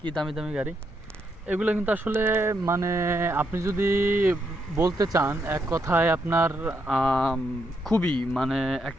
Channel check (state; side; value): normal; both; correlation 0.78